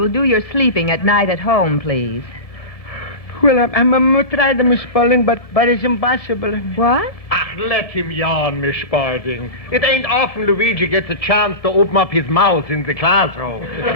will do your sleeping at night at home, please. Well, I'm trying to, Miss Spaulding, but it's impossible. What? Let him yawn, Miss Spaulding. It ain't often Luigi gets a chance to open up his mouth in the classroom.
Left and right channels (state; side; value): late; right; 1.2 ms